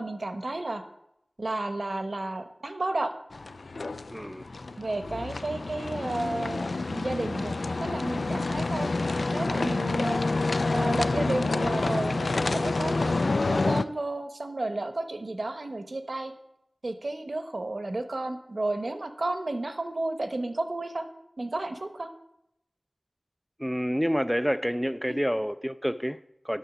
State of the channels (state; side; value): normal; both; correlation 0.97